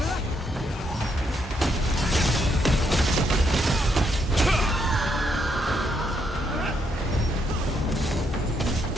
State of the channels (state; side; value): normal; both; correlation 0.76